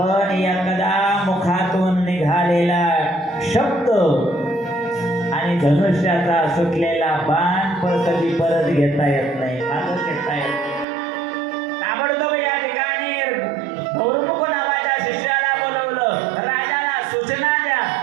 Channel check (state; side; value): drops out; left; at 10.9 s